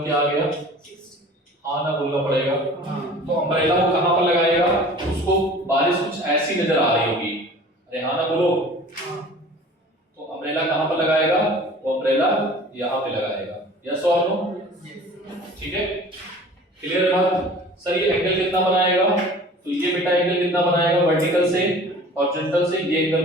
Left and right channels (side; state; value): both; normal; correlation 0.44